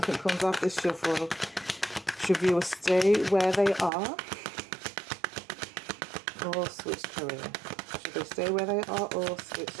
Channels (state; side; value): drops out; left; at 3.9 s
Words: comes off this shuffle. Should viewers stay where they are or switch career? Should they stay where they are or switch